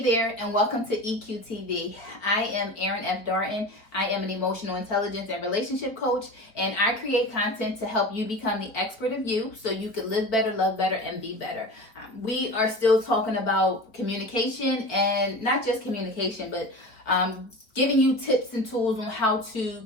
there, and welcome to EQTV. I am Erin F. Darton. I am an emotional intelligence and relationship coach, and I create content to help you become the expert of you so you can live better, love better, and be better. We are still talking about communication, and not just communication, but giving you tips and tools on how to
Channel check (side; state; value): right; late; 4.3 ms